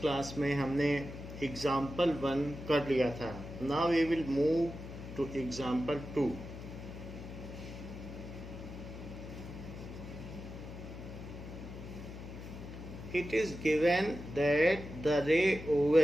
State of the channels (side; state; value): left; noise; hum, 11 dB below the sound